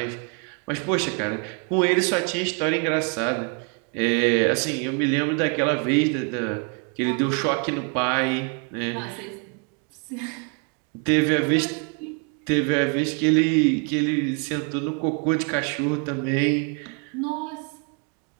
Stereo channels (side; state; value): left; quieter; 36.6 dB